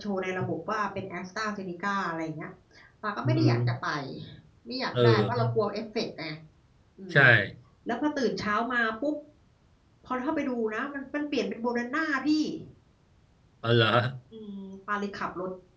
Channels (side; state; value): both; identical; correlation 1.00